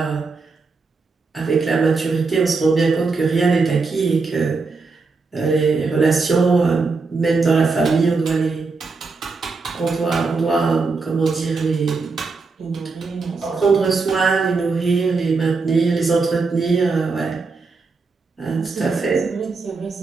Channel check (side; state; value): left; quieter; 4.3 dB